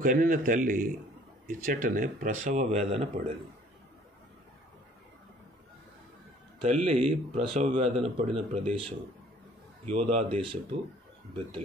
కనిన తల్లి ఇచ్చటనే ప్రసవ వేదన పడేది. తల్లి ప్రసవ వేదన పడిన ప్రదేశం యోధా దేశపు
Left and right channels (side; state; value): both; normal; correlation 0.56